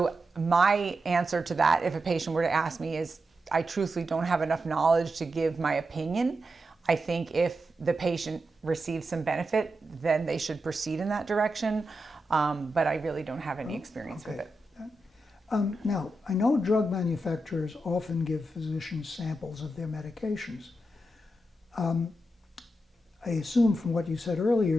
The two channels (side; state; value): both; normal; correlation 0.88